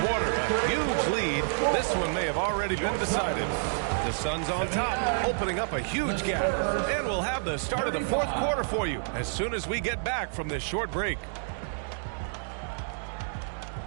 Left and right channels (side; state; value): left; silent; digital silence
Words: a huge lead. This one may have already been decided. The Suns on top, opening up a huge gap. And we'll have the start of the fourth quarter for you as soon as we get back from this short break.